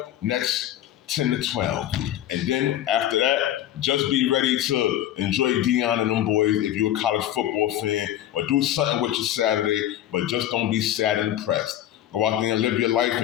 next 10 to 12. And then after that, just be ready to enjoy Deion and them boys if you're a college football fan, or do something with your Saturday, but just don't be sad and depressed. Go out there and live your life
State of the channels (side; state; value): right; quieter; 12.3 dB